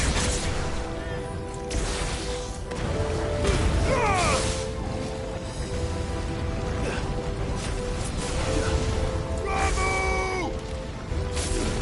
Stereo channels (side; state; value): both; identical; correlation 1.00